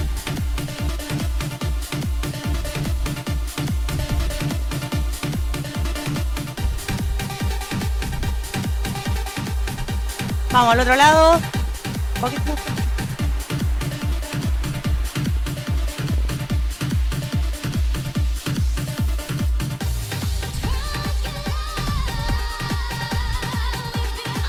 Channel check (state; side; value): identical; both; correlation 1.00